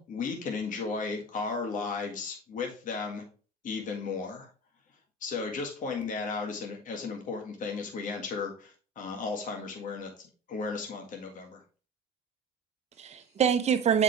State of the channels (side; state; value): both; normal; correlation 0.33